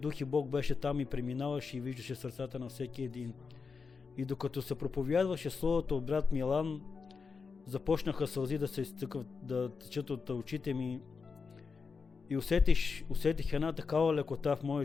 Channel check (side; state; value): right; quieter; 5.1 dB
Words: и Бог беше там и преминаваше и виждаше сърцата на всеки един. И докато се проповядваше Словото от брат Милан, започнаха сълзи да се изтъкват, да течат от очите ми и усетих една такава лекота в моя